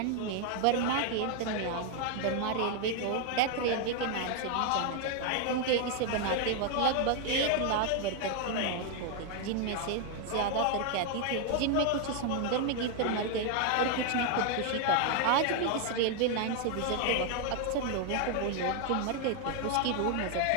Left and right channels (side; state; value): both; different; correlation 0.00